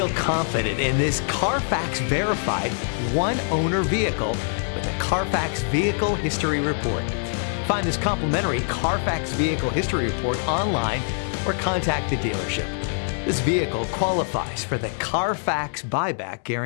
confident in this Carfax verified one-owner vehicle with a Carfax Vehicle History Report. Find this complimentary Carfax Vehicle History Report online or contact the dealership. This vehicle qualifies for the Carfax Buyback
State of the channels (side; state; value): right; silent; digital silence